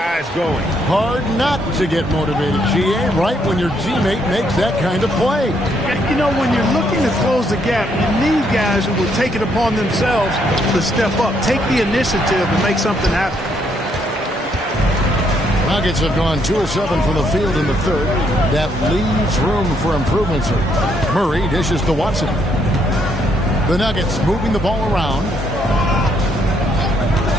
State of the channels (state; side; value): normal; both; correlation 0.72